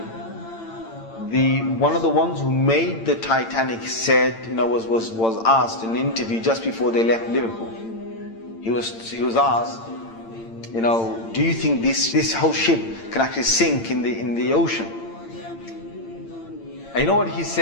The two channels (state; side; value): late; right; 8.8 ms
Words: one of the ones who made the Titanic said, was asked in an interview just before they left Liverpool. He was asked, do you think this whole ship can actually sink in the ocean? And you know what he